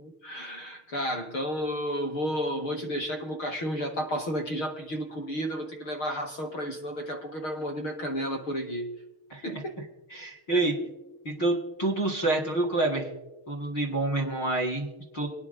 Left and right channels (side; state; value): right; late; 6.4 ms